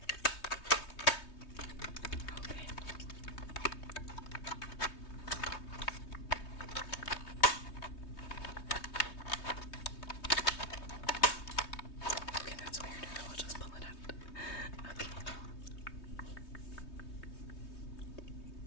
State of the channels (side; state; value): right; late; 3.2 ms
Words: Okay. Okay, that's weird. I'll just pull it out. Okay.